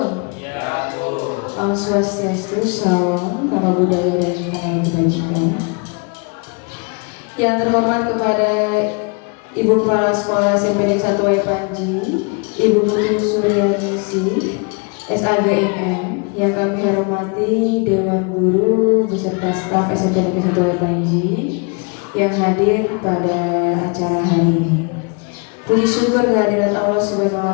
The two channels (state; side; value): quieter; right; 33.8 dB